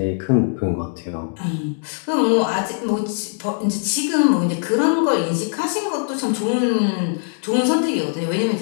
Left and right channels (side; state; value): right; silent; digital silence